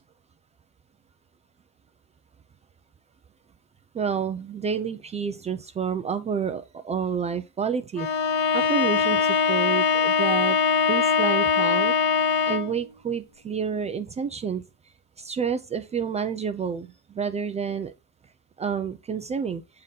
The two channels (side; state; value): both; normal; correlation -0.03